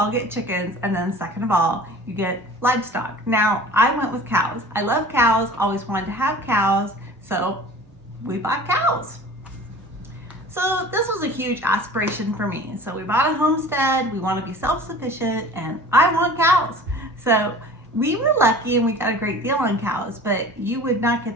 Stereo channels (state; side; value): normal; both; correlation 0.43